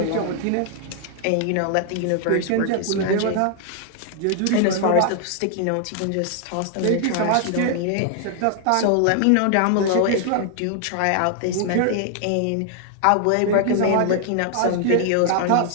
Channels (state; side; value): different; both; correlation 0.00